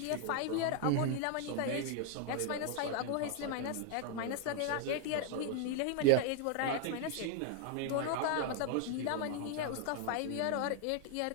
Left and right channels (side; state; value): both; different; correlation 0.00